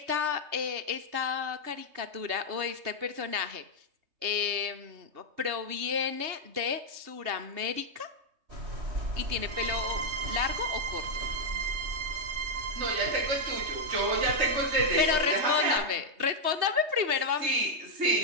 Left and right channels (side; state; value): left; late; 3.2 ms